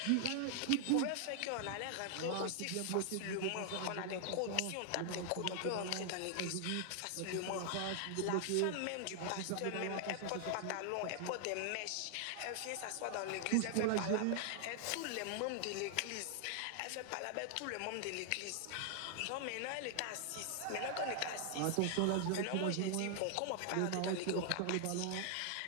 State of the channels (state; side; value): different; both; correlation 0.00